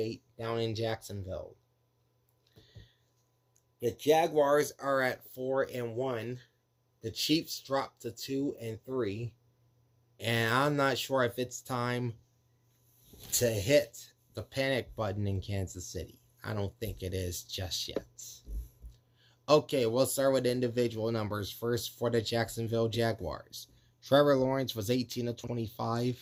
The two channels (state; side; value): identical; both; correlation 1.00